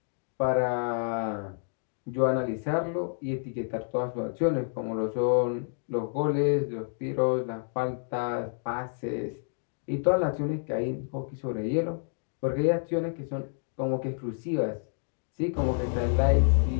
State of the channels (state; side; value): silent; right; digital silence